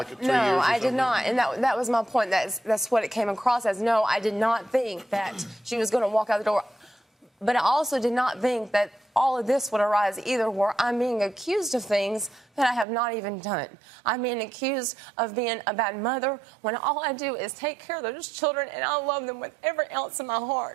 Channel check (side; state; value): left; drops out; at 12.9 s